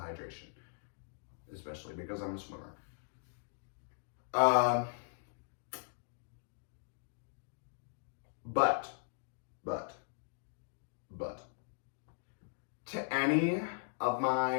especially because I'm a swimmer. But to any of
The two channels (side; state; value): right; silent; digital silence